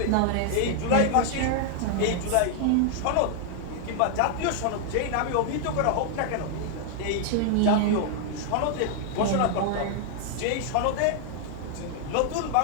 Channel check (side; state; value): both; different; correlation 0.00